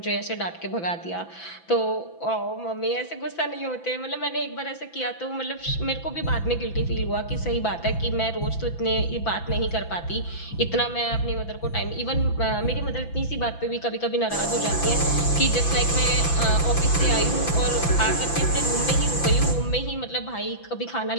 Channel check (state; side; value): late; right; 6.0 ms